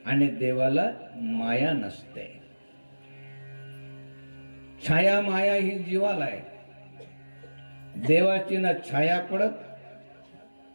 आणि देवाला माया नसते. छाया माया ही जीवाला आहे. देवाची ना छाया पडत,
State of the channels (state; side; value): inverted; both; correlation -1.00